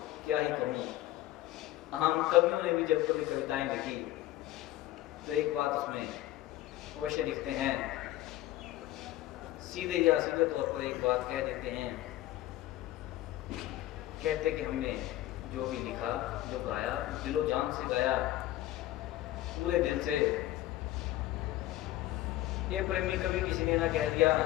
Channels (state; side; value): quieter; right; 15.1 dB